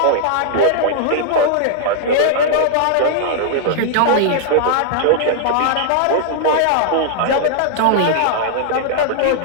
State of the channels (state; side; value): different; both; correlation -0.01